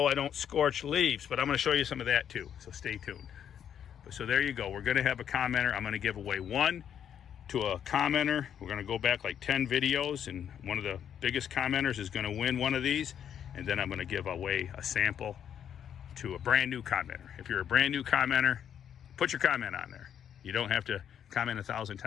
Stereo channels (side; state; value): right; quieter; 9.0 dB